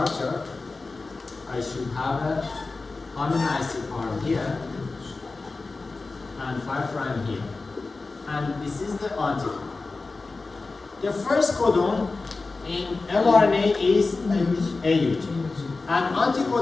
I should have a amino acid arm here and 5' here. And this is the anticodon. The first codon in mRNA is AUG. And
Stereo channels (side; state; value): right; quieter; 3.7 dB